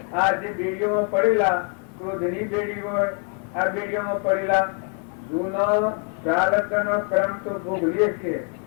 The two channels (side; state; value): right; quieter; 37.6 dB